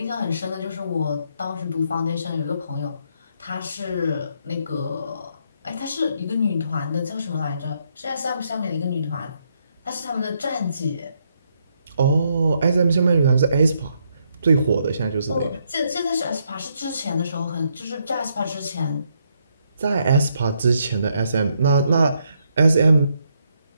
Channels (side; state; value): both; inverted; correlation -0.75